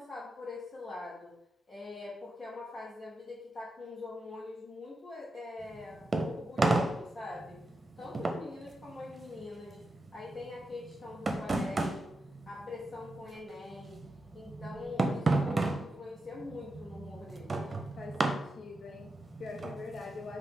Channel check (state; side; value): normal; both; correlation 0.88